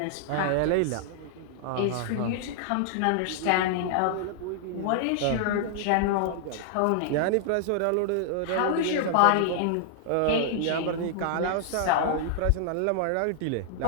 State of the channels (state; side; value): different; both; correlation 0.00